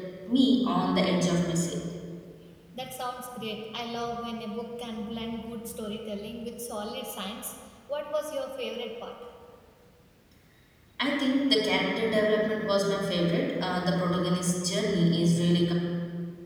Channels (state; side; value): identical; both; correlation 1.00